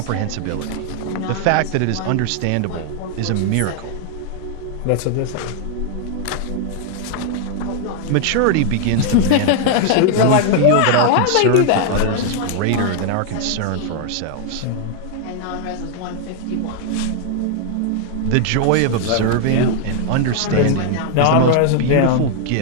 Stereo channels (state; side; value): different; both; correlation 0.00